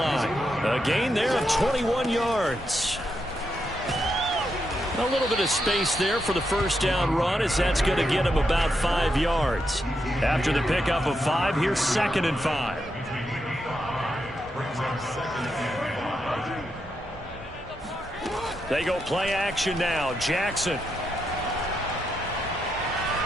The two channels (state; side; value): normal; both; correlation 0.83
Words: A gain there of 21 yards. A little bit of space there for the first down run as that's going to get him about 5 yards. After the pickup of 5, here's 2nd and 5. They go play action now. Jackson.